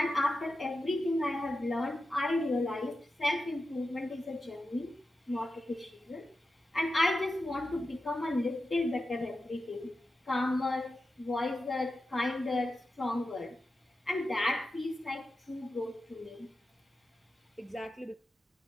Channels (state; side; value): normal; both; correlation 0.91